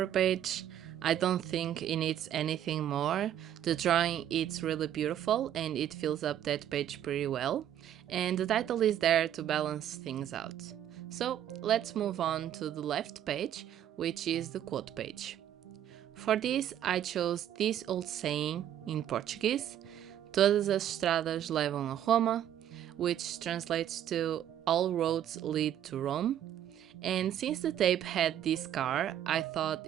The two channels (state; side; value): quieter; left; 10.8 dB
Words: page. I don't think it needs anything more. The drawing is really beautiful and it fills up that page pretty well. And the title is there to balance things out. So let's move on to the left page, which is the quote page. For this, I chose this old saying in Portuguese, Todas as estradas levam a Roma, which translates to all roads lead to Rome. And since the tape had this car, I thought